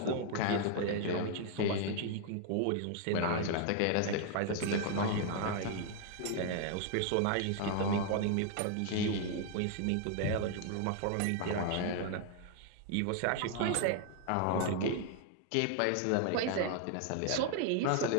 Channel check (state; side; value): different; both; correlation 0.00